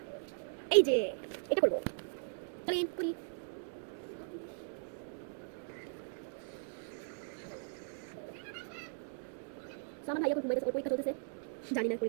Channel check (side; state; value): left; silent; digital silence